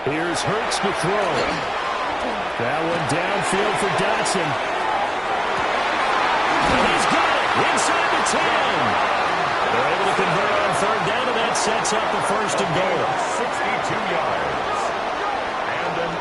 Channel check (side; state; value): both; identical; correlation 1.00